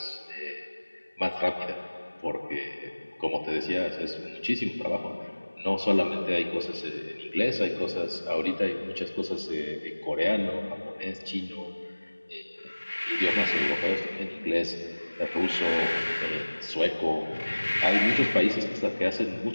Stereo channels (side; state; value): both; inverted; correlation -1.00